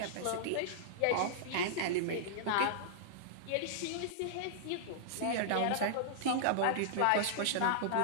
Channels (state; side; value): different; both; correlation -0.02